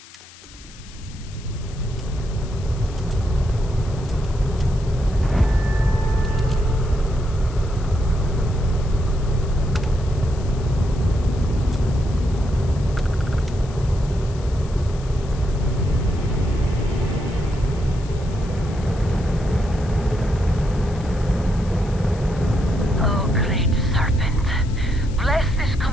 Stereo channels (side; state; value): left; noise; hiss, 21 dB below the sound